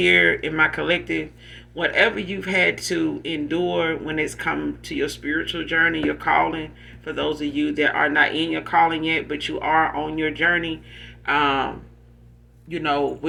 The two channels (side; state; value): both; identical; correlation 1.00